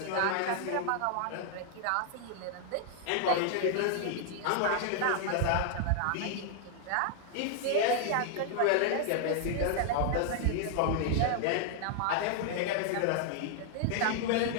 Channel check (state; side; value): different; both; correlation 0.00